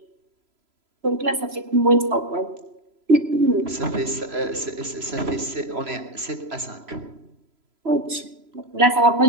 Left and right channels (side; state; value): left; late; 3.0 ms